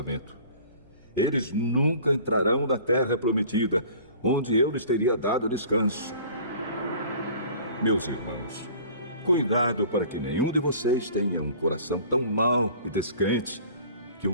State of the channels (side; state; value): both; inverted; correlation -0.47